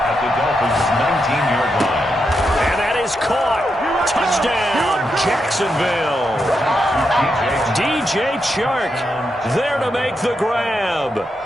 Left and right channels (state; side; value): normal; both; correlation 0.84